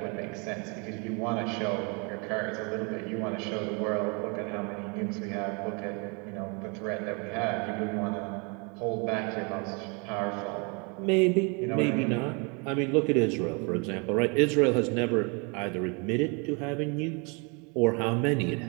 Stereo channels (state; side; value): quieter; left; 32.6 dB